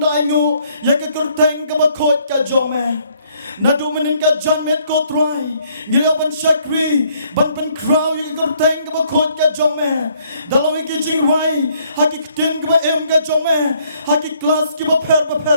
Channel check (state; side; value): inverted; both; correlation -0.66